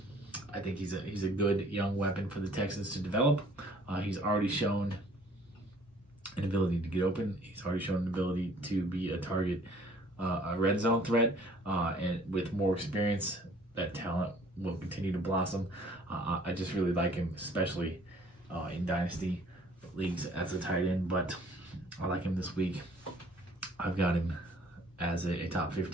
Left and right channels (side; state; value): both; normal; correlation 0.56